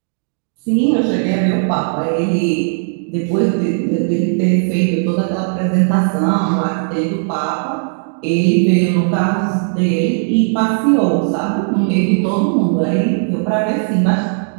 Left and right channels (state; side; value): silent; left; 65 dB below the other